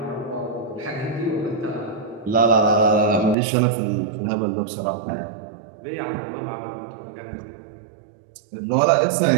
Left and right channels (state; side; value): drops out; left; at 3.4 s